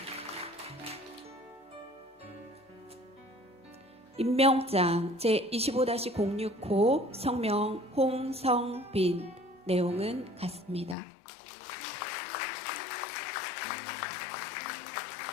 임명장 제25-065 성명 홍성빈. 내용은 같습니다.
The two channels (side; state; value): right; drops out; at 11.0 s